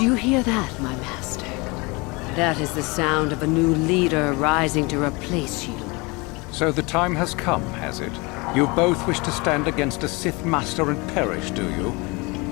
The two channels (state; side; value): quieter; right; 26.7 dB